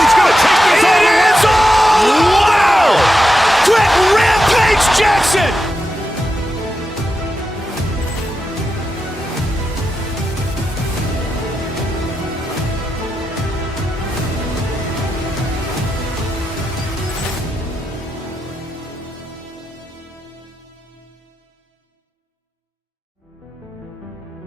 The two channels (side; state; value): both; normal; correlation 0.88